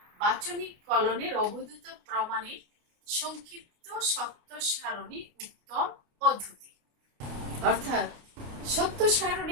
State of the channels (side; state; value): left; late; 29 ms